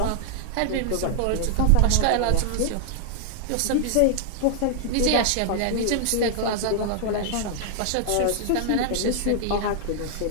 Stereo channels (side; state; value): both; different; correlation 0.00